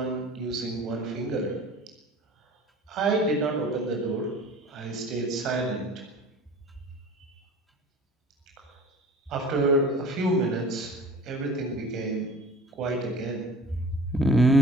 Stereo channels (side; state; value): both; normal; correlation 0.43